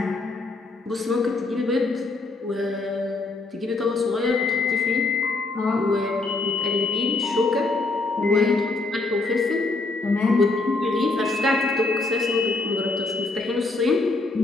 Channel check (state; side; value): quieter; right; 3.4 dB